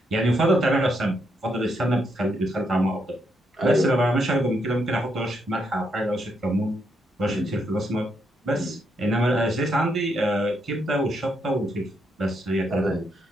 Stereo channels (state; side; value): normal; both; correlation 0.78